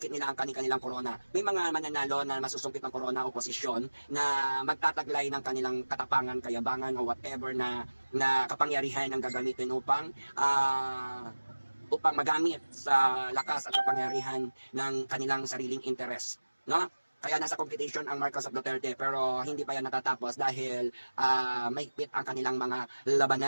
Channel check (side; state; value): both; inverted; correlation -1.00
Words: nila ang kanilang corona. May mga mananalo na masusungkit ng corona oposisyon na magtataglay ng kanilang katapangan, kayabangan o whatever na kapangyarihan ang gagamitin upang magamit sa lakas at kapangyarihan ng kanilang sariling interes. No? Kaya nasa competition ang Marcos at Duterte pero hindi pa yan natatapos dahil mahigpit ang kanilang mga